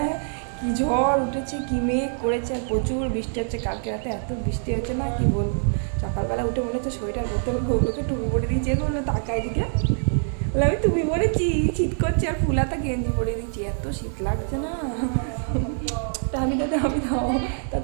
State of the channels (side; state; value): left; silent; digital silence